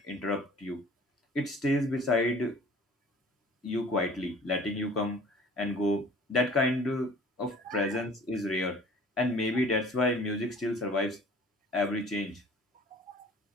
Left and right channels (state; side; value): normal; both; correlation 0.49